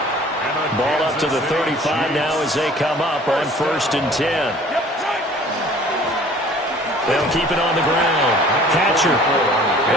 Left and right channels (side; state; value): both; normal; correlation 0.50